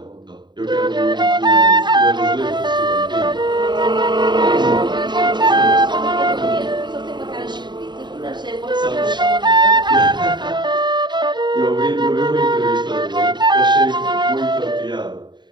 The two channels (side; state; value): left; late; 0.22 ms